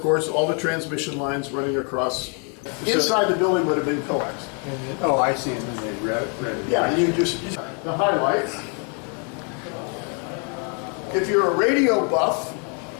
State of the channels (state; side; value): quieter; right; 38.9 dB